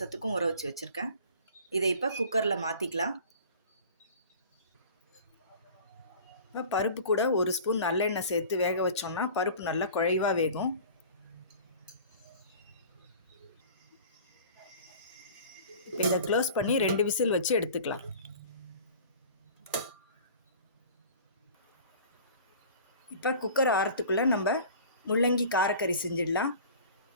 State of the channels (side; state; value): both; inverted; correlation -0.43